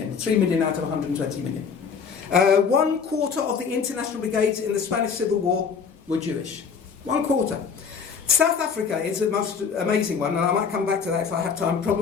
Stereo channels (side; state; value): right; quieter; 6.1 dB